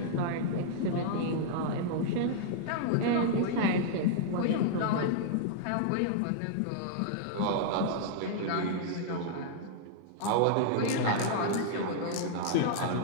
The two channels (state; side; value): different; both; correlation -0.01